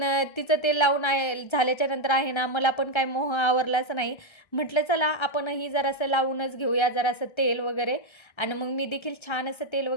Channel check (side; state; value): right; late; 1.3 ms